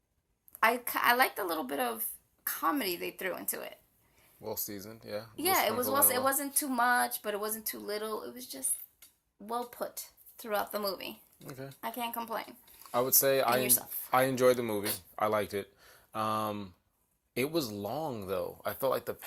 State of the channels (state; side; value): identical; both; correlation 1.00